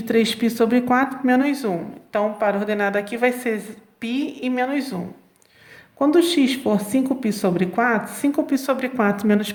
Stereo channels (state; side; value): identical; both; correlation 1.00